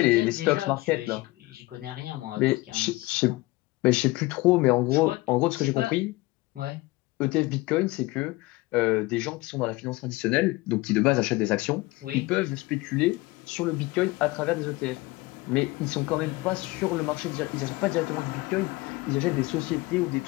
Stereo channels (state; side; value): quieter; right; 21.3 dB